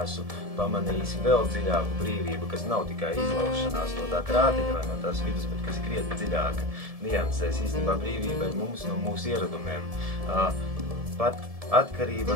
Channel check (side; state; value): left; late; 1.7 ms